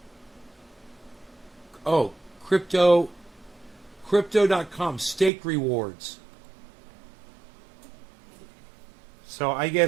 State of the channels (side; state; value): left; drops out; at 5.3 s